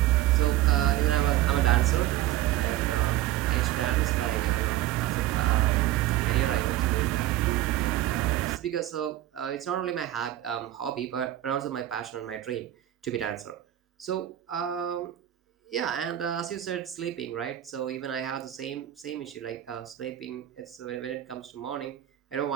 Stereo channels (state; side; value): quieter; left; 13.8 dB